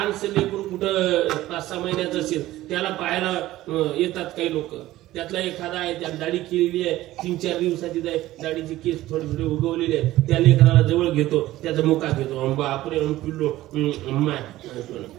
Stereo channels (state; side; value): quieter; left; 15.9 dB